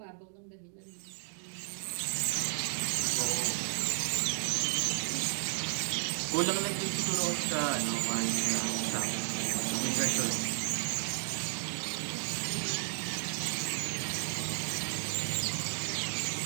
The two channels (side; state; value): left; silent; digital silence